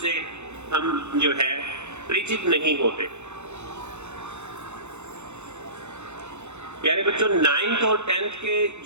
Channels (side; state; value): left; late; 0.82 ms